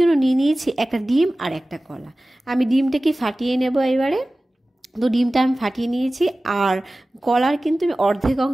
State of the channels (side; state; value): both; normal; correlation 0.97